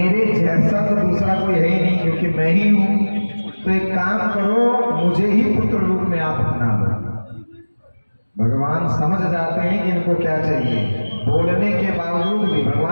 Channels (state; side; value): inverted; both; correlation -1.00